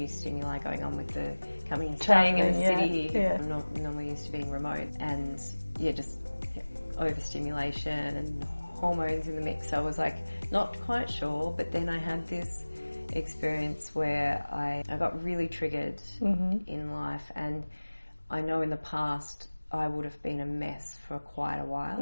stimuli going on with the coming and staying in the city. I'm not normally used to being remote, and just overstimulation and hormones in the mix. So I was like not quite sure, but then I had this experience where I got really triggered in life, and I know in the past I would have been a mess for quite a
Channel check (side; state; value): both; inverted; correlation -1.00